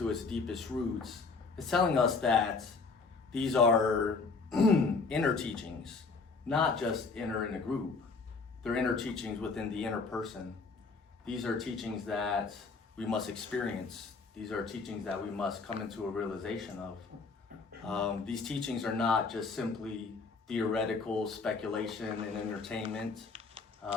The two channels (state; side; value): quieter; right; 4.4 dB